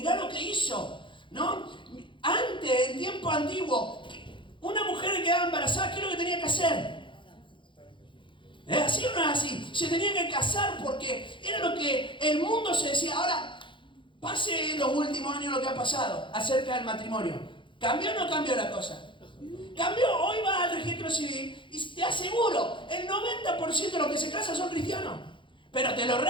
lo que hizo, ¿no? Antes, en tiempo antiguo, una mujer que quedaba embarazada, ¿qué es lo que tenía que hacer? ¿Es así o no es así? Se tenía que casar porque era lo que el mundo se decía. Ahora, pase en los últimos años lo que ha pasado acerca del matrimonio. ¿Cambió o no cambió la cosa? Cambió. Hoy vas al registro civil y te aseguro, el 90% de los que se casan son cristianos. Pero te lo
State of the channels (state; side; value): late; right; 0.24 ms